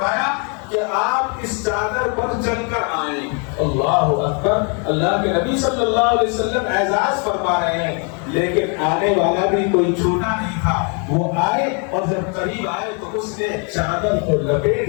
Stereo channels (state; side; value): quieter; right; 36.7 dB